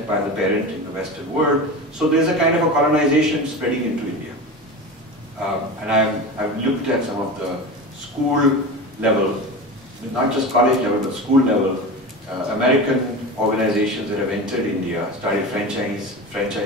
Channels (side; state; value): both; normal; correlation 0.28